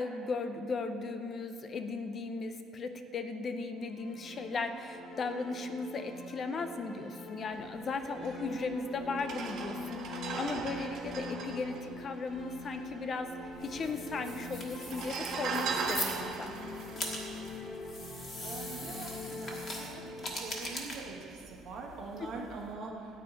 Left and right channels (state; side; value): normal; both; correlation 0.67